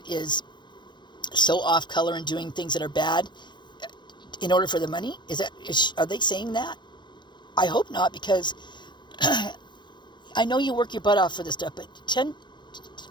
is so off color and doing things that are bad in order for the money? Are they saying that? I hope not, because I know you work your butt off for this stuff, but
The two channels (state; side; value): late; right; 0.22 ms